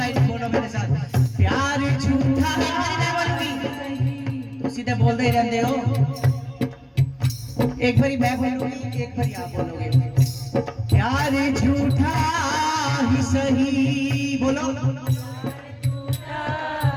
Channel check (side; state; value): both; identical; correlation 1.00